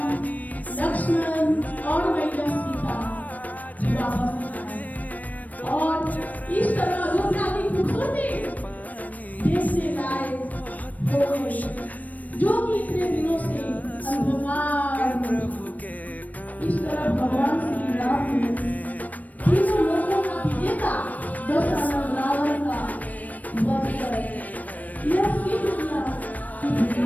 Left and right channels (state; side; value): late; right; 0.075 ms